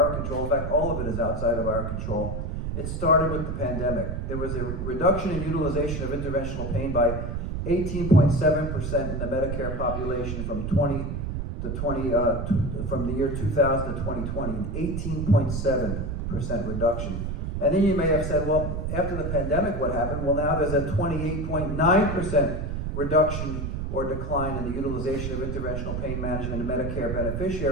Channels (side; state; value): right; noise; rumble, 3 dB below the sound